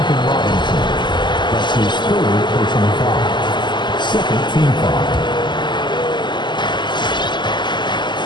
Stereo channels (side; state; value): right; late; 0.22 ms